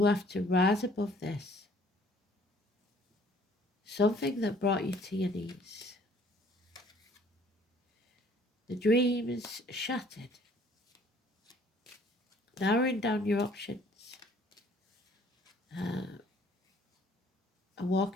have to rise above this. Something that brought you to your knees. The dreams shattered. Narrowing down your options. And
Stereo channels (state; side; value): normal; both; correlation 0.58